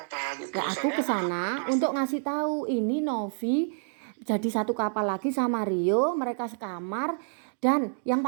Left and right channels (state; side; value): silent; left; 59 dB below the other